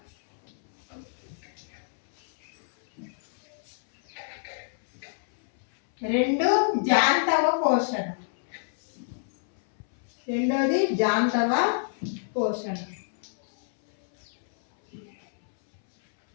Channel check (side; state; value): right; silent; 60 dB below the other